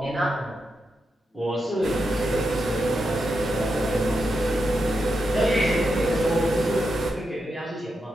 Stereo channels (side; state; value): both; normal; correlation 0.86